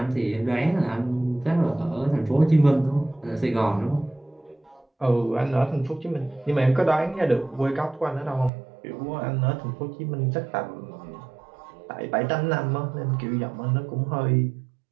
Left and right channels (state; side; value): drops out; left; at 8.5 s